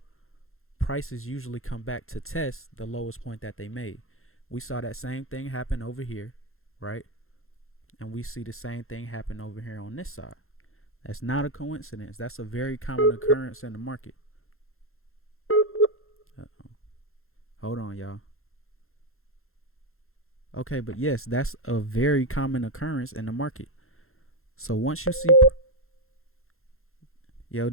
prices usually come back to test the lowest point that they made. We saw that same thing happen over here, right? And we see the same thing happen over here on this side. That's not a coincidence. That's a very common occurrence in the market. Uh-oh. Hold on, y'all. Okay, but yes, that's a very common occurrence in the market. So once you see, yo,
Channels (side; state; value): right; late; 0.61 ms